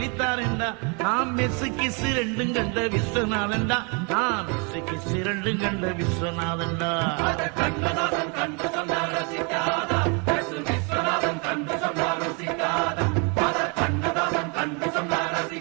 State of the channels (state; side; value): quieter; left; 34.3 dB